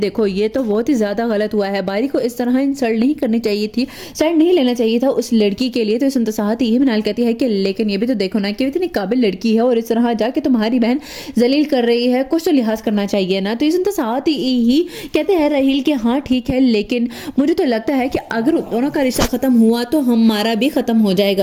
ये तो बहुत ही ज्यादा गलत हुआ है, बारी को इस तरह इंसल्ट नहीं करनी चाहिए थी, साइड नहीं लेना चाहिए था उस लड़की के लिए। तो इसके साथ ही हिनाल कहती है कि लेकिन ये भी तो देखो ना कि इतनी काबिल लड़की है और इस तरह जाके तुम्हारी बहन जलील कर रही है, कुछ तो लिहाज करना चाहिए ना। तो इसके साथ ही कहते हैं राहील कि हाँ ठीक है, लेकिन मुझे तो लगता है कि अगर दोनों का रिश्ता खत्म हुआ तो हमारा भी खत्म हो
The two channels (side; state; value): both; identical; correlation 1.00